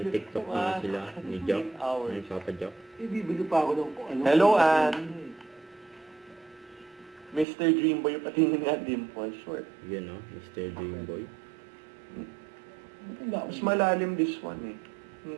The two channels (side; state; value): left; drops out; at 7.5 s